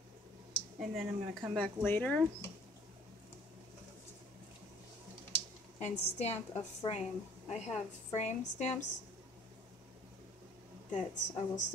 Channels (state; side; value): normal; both; correlation 0.55